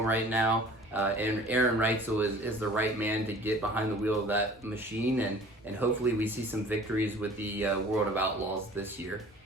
right now. And Aaron Reitzel is the right man to get behind the wheel of that machine, and hopefully we see some victories with the World of Outlaws this year.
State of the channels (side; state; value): both; normal; correlation 0.48